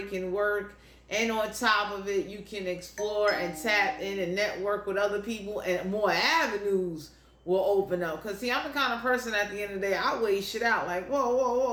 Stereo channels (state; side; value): identical; both; correlation 1.00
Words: work. And on top of it, you can explore and tap in and network with other people, and more avenues will open up. Because, see, I'm the kind of person at the end of the day, I weigh shit out. Like,